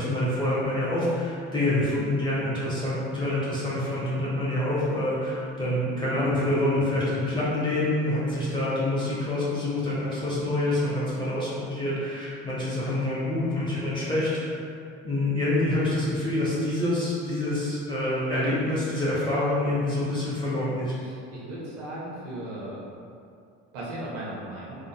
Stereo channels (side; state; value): both; normal; correlation 0.44